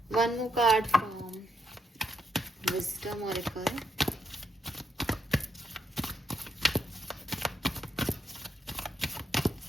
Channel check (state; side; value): normal; both; correlation 0.78